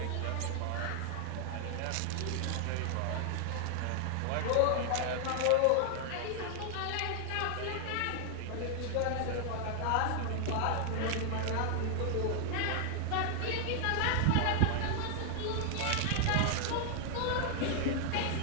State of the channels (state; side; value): different; both; correlation 0.00